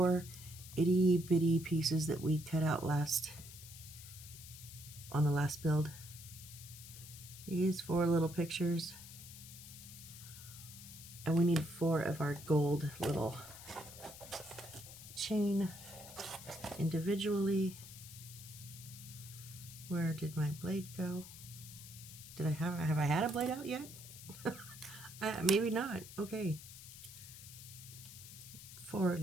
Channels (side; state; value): left; noise; hiss, 14 dB below the sound